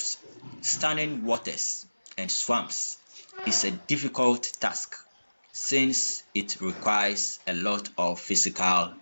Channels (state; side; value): inverted; both; correlation -1.00